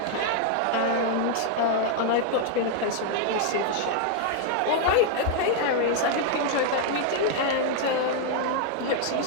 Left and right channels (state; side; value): different; both; correlation 0.00